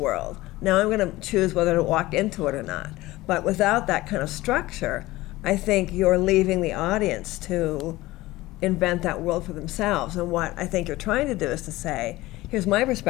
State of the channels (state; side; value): quieter; right; 18.5 dB